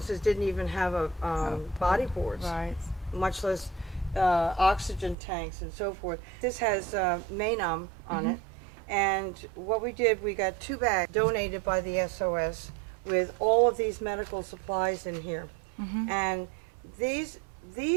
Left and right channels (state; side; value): drops out; left; at 5.2 s